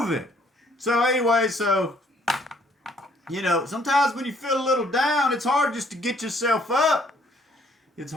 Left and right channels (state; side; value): normal; both; correlation 0.64